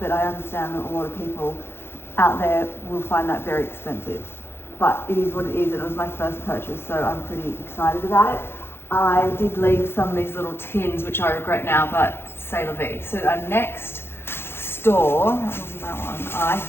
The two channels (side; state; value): right; late; 0.11 ms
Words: I understand that a lot of people out there will find that very expensive. But it is what it is, and it was my first purchase, so I'm pretty excited about it. I did leave some of these little tins, which I regret now, but c'est la vie. So our next store, that wasn't that one, I